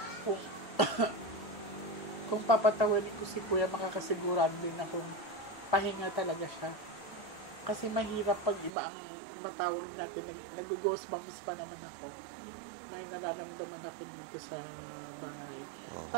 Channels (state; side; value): drops out; left; at 8.7 s